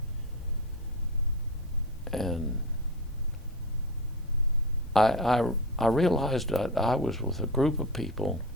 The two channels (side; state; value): both; normal; correlation 0.25